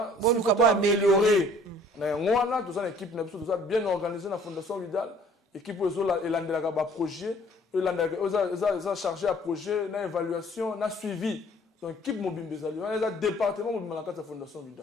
si faut améliorer na ngwana to sala équipe na biso to sala bien organisé na Fondation Vidal équipe ozo elandela ba projet elandela oza chargé à projet na évaluation na suivi donc équipe mobimbezali on département mobimala ka Fondation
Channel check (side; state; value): both; normal; correlation 0.56